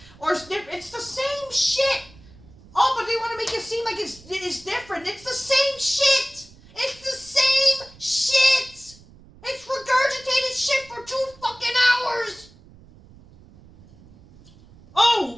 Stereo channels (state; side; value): noise; right; rumble, 23 dB below the sound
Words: the same shit. Oh, but they want to make it seem like it's different. It's the same shit. It's the same shit. It's regurgitated shit for 2 fucking hours.